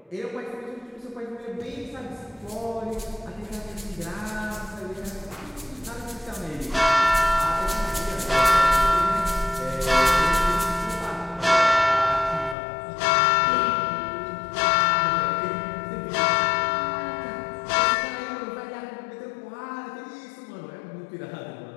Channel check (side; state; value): right; drops out; at 12.6 s